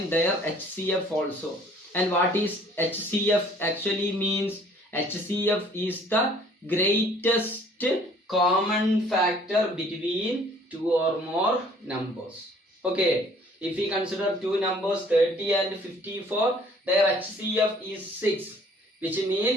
their HCF also. And what is HCF actually means? HCF is the greatest common factor between two or more numbers. Okay, if we consider two numbers 30 and 54, their HCF is 6, which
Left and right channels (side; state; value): both; normal; correlation 0.56